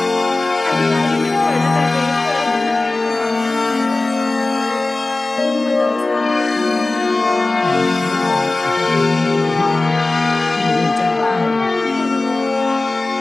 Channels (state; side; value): quieter; right; 3.1 dB